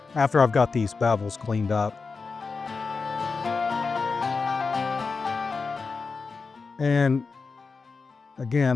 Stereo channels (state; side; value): quieter; right; 4.6 dB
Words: got these bevels cleaned up. And